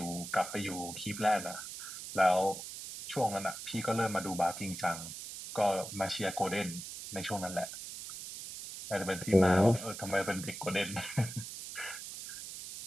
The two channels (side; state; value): right; noise; hiss, 9 dB below the sound